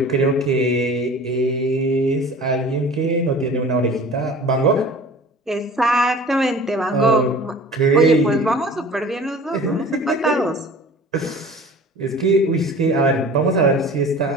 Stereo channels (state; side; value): normal; both; correlation 0.42